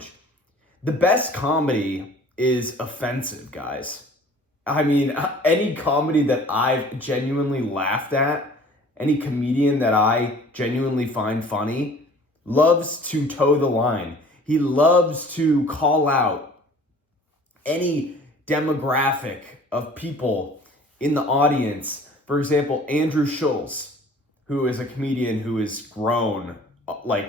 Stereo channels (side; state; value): both; normal; correlation 0.49